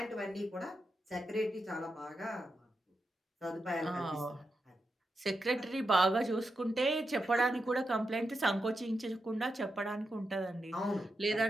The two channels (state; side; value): normal; both; correlation 0.87